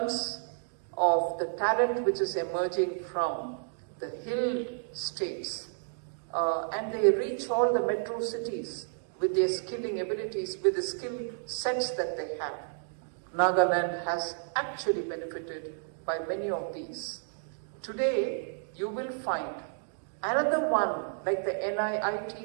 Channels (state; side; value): silent; left; digital silence